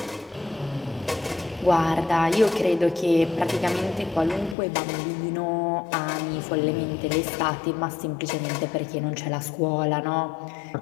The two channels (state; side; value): drops out; right; at 4.5 s